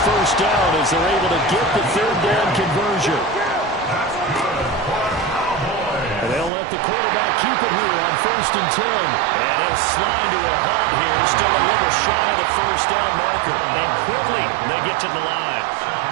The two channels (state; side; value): drops out; left; at 6.5 s